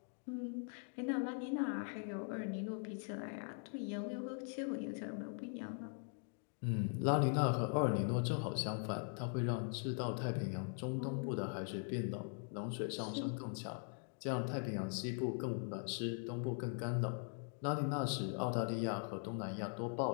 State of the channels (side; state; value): right; silent; 50 dB below the other